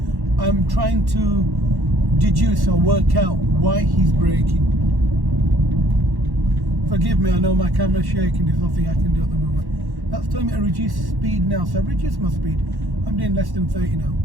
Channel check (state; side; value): late; left; 1.1 ms